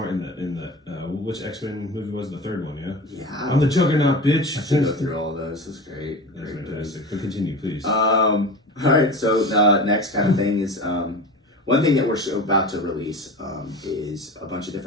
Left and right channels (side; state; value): both; normal; correlation 0.32